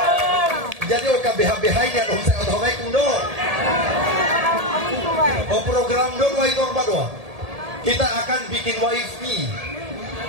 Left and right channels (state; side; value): late; left; 1.8 ms